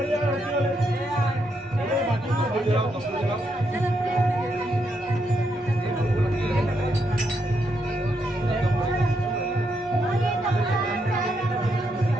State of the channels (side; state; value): both; normal; correlation 0.79